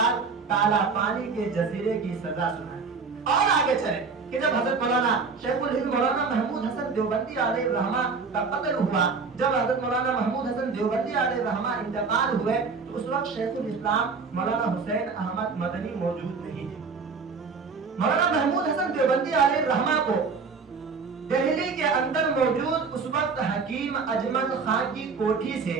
کالا پانی کے جزیرے کی سزا سنائی۔ اور آگے چلے کہ جب حضرت مولانا شیخ الہند مولانا محمود حسن دیوبندی علیہ الرحمہ کا قتل ہوا، جب حضرت مولانا محمود حسن دیوبندی علیہ الرحمہ انتقال ہوئے، تو اس وقت شیخ الاسلام مولانا حسین احمد مدنی موجود نہیں تھے۔ مولانا محمود حسن دیوبندی علیہ الرحمہ کو دہلی کے اندر موجود اس وقت حکیم اجمل خان کی کوٹھی سے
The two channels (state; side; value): quieter; left; 4.9 dB